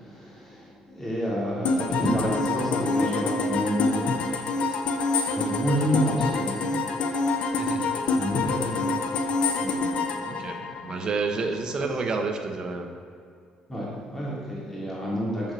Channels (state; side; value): normal; both; correlation 0.63